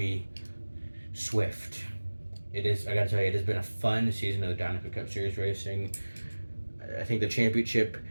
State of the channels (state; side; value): inverted; both; correlation -1.00